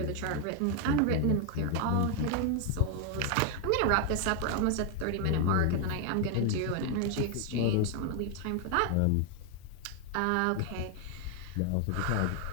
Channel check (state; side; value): different; both; correlation 0.01